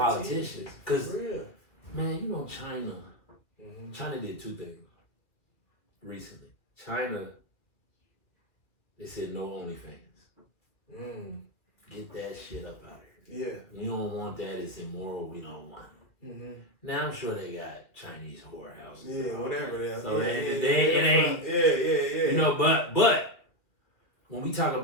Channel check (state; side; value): late; right; 2.3 ms